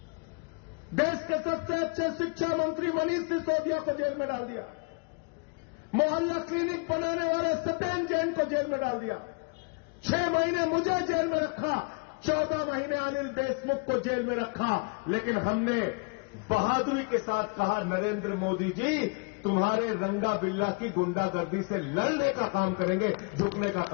देश के सबसे अच्छे शिक्षा मंत्री मनीष सिसोदिया को जेल में डाल दिया। मोहल्ला क्लिनिक बनाने वाले सत्येंद्र जैन को जेल में डाल दिया। 6 महीने मुझे जेल में रखा, 14 महीने अनिल देशमुख को जेल में रखा। लेकिन हमने बहादुरी के साथ कहा, नरेंद्र मोदी जी तुम्हारे रंगा बिल्ला की गुंडागर्दी से लड़ने का काम करेंगे, झुकने का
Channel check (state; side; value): quieter; right; 32.1 dB